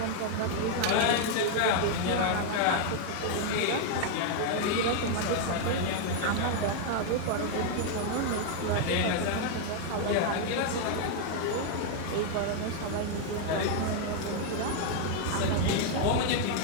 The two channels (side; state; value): both; different; correlation 0.00